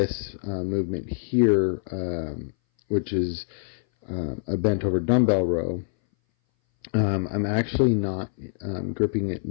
movement here, which is a bent over dumbbell row, I'm actually not gripping it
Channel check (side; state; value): right; silent; 59 dB below the other